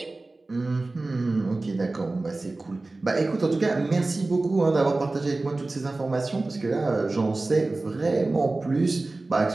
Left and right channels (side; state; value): left; quieter; 3.2 dB